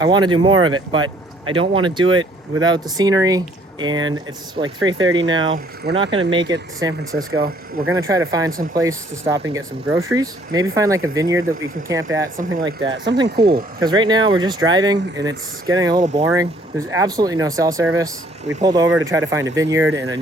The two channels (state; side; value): normal; both; correlation 0.61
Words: want to do more of it, but I don't want to do it without the scenery. And it's like 3:30 now. We're not going to make it to San Francisco. We're going to try to find some place to stop and get some groceries. Maybe find like a vineyard that we can camp at, something like that. Something cool. Because right now we're just driving and it's getting a little boring. There's absolutely no cell service. We pulled over to try to find a vineyard and a